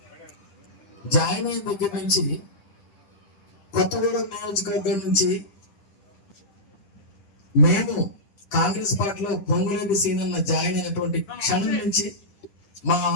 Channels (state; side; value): late; right; 10 ms